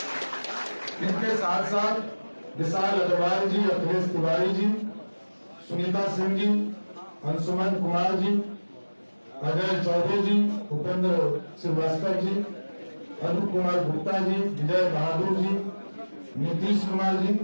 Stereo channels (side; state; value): both; inverted; correlation -1.00